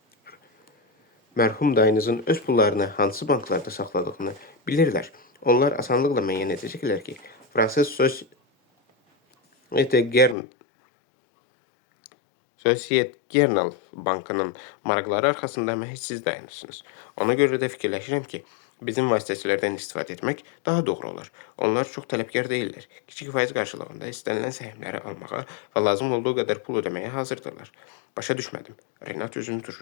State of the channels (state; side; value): drops out; right; at 10.4 s